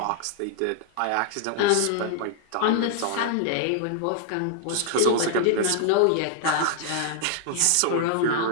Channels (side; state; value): both; different; correlation -0.01